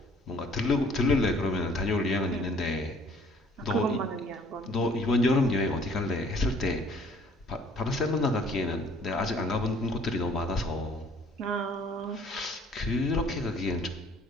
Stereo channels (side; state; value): both; normal; correlation 0.57